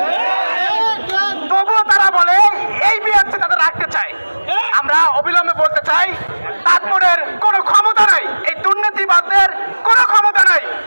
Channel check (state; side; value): inverted; both; correlation -1.00